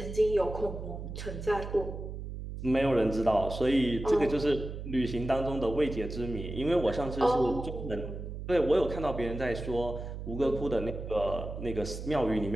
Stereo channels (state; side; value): noise; right; hum, 8 dB below the sound